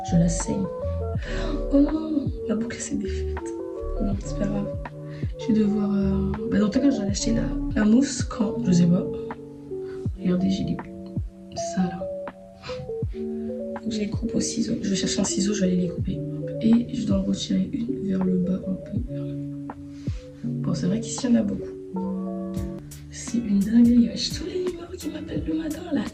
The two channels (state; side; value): identical; both; correlation 1.00